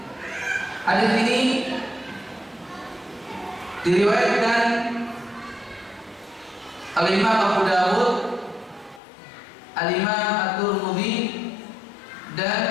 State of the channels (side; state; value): right; drops out; at 9.0 s